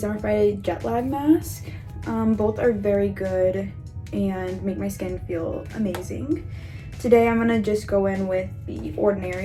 Friday Jet Lag Mask. Both are very good and make my skin feel amazing. Today I'm gonna just go in with the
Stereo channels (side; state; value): both; identical; correlation 1.00